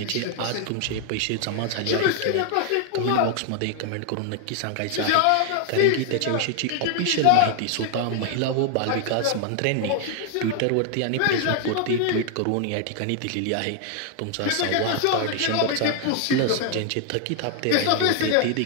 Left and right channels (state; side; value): different; both; correlation 0.00